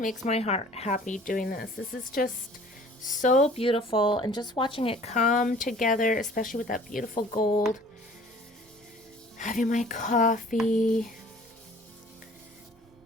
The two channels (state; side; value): normal; both; correlation 0.50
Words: my heart happy doing this. This is just so beautiful, and just watching it come together, especially with that beautiful gold. Having my coffee.